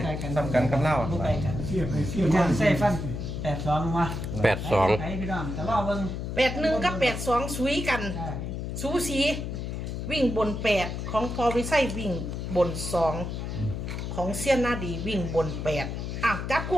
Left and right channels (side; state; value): left; noise; hum, 5 dB below the sound